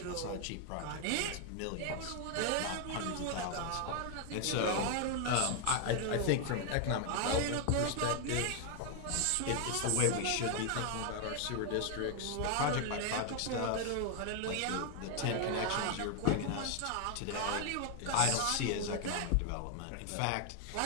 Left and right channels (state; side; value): different; both; correlation 0.01